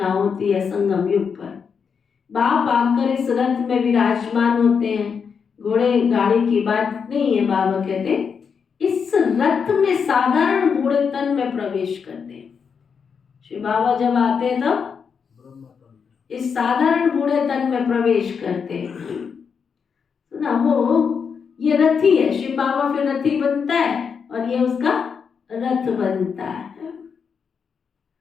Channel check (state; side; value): quieter; right; 6.3 dB